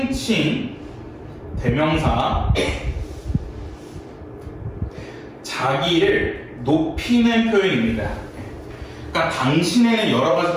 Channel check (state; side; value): identical; both; correlation 1.00